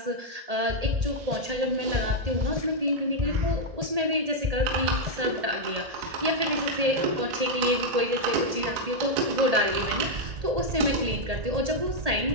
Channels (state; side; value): late; left; 1.8 ms